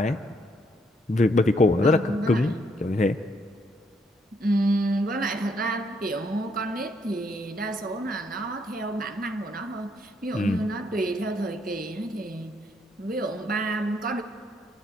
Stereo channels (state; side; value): normal; both; correlation 0.72